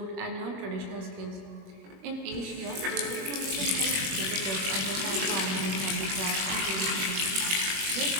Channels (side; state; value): left; late; 21 ms